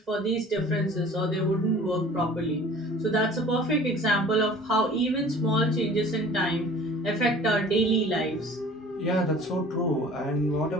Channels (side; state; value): both; normal; correlation 0.46